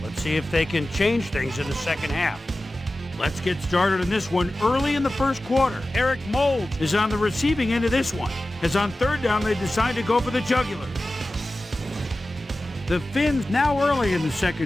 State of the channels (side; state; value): both; normal; correlation 0.95